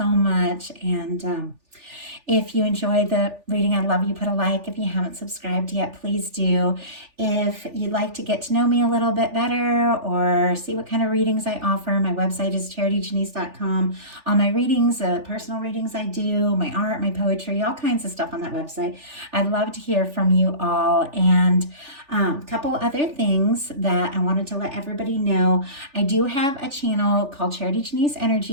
much. And If you enjoy the reading, I'd love you put a like. If you haven't subscribed yet, please do. If you'd like to get to know me a little bit better or see what kind of readings I offer, my website is charityjanice.com. All my readings, personal readings I do, my art, my poetry, all kinds of stuff on that website. I'd love to hear from you all. And a couple other things that I wanted to let everybody know. I do have a channel called Charity Janice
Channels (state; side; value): late; left; 3.4 ms